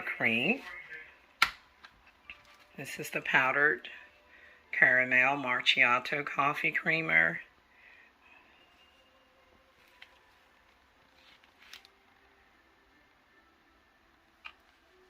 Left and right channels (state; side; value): identical; both; correlation 1.00